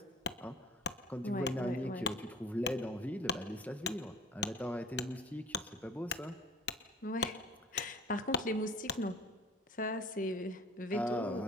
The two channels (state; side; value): normal; both; correlation 0.46